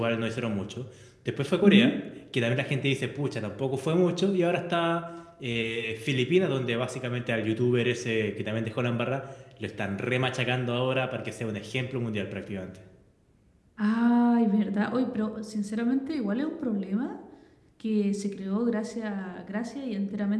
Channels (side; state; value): both; identical; correlation 1.00